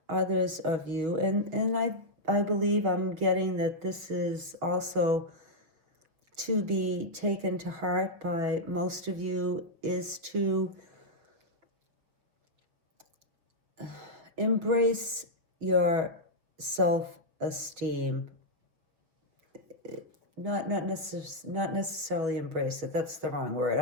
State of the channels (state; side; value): late; left; 6.0 ms